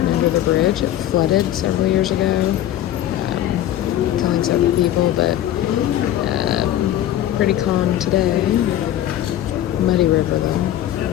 under the bridge. It flooded several years ago, killing several people, but pretty calm today. Muddy river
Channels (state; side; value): quieter; right; 12.5 dB